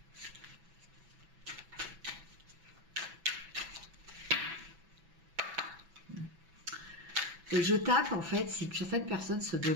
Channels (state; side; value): late; left; 6.0 ms